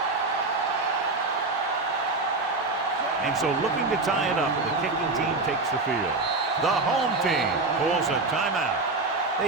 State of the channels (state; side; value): quieter; left; 3.5 dB